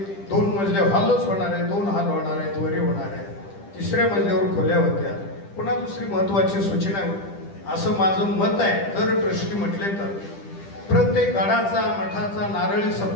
2 मजले हॉलच होणार आहे, 2 हॉल होणार आहेत, वरी होणार आहे. 3ऱ्या मजल्यावर खोल्या होत्या. पुन्हा दुसरी महत्वाची सूचना असं माझं मत आहे. जर ट्रस्टी म्हटले तर प्रत्येक गडाचा मठाचा नारळी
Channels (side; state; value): right; late; 10 ms